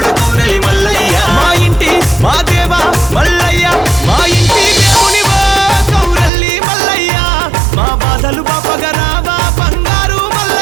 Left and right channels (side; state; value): left; drops out; at 6.3 s